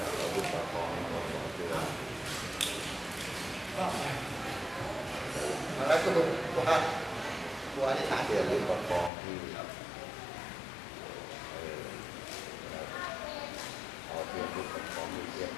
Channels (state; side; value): drops out; right; at 9.1 s